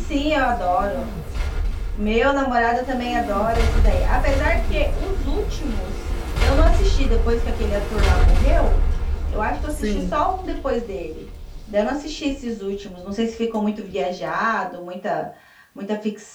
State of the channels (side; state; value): both; identical; correlation 1.00